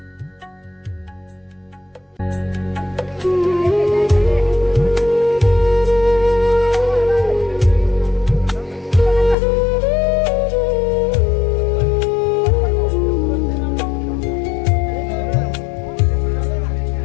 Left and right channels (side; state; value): right; drops out; at 9.3 s